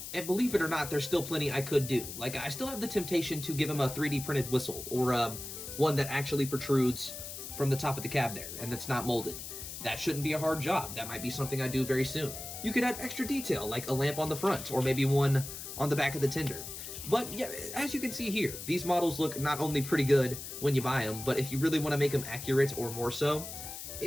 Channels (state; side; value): noise; left; hiss, 9 dB below the sound